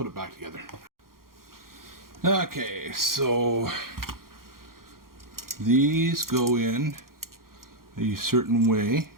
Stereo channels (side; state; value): left; late; 0.92 ms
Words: it back together. Okay, so these go in a certain way,